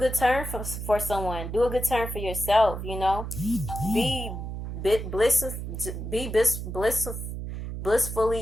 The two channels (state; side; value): noise; right; hum, 6 dB below the sound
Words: turn for someone. Do a good turn for yourself. Be bliss be